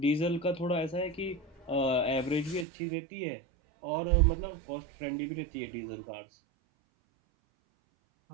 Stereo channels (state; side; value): drops out; left; at 2.7 s